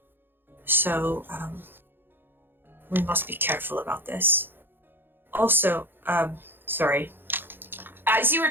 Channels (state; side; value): late; left; 0.099 ms